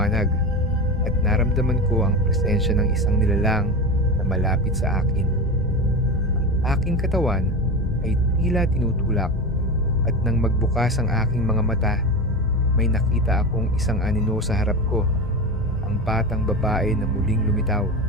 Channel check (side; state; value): both; normal; correlation 0.24